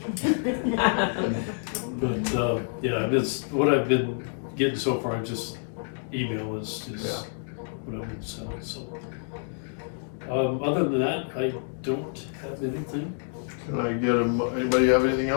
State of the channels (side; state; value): right; silent; 60 dB below the other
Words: but, yeah, and it's, what I've been getting so far, just email is Yeah. what I've been selling, so. Other than that, I don't have anything. Can I get anybody have anything